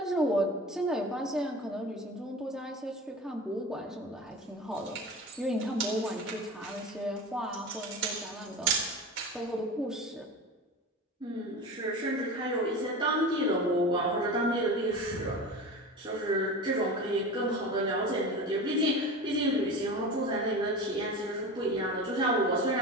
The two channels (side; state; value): both; normal; correlation 0.31